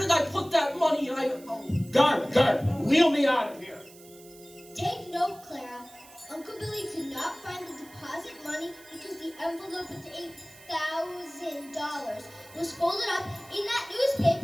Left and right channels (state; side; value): noise; right; hiss, 22 dB below the sound